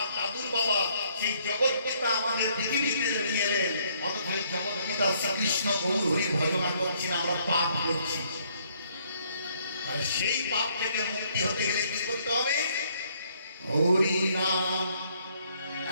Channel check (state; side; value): inverted; both; correlation -0.67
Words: দাদুর বাবা। সেই জগৎ পিতা আমাদের পৃথিবীতে নিয়ে এলেন, অথচ জগৎ পিতা শ্রীকৃষ্ণ গৌর হরি ভজনা করছি না, আমরা পাপ করছি। আর সেই পাপ থেকে মুক্তি হতে গেলে কি করতে হবে? হরি নাম